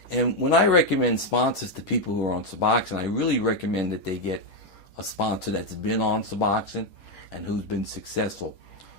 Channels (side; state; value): right; late; 6.3 ms